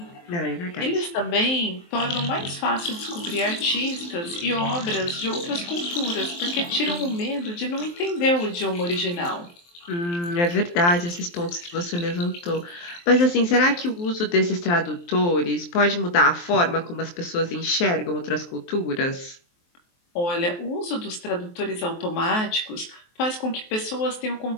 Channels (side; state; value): right; late; 23 ms